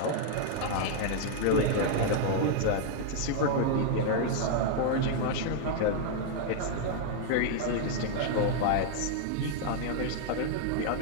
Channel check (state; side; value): different; both; correlation 0.00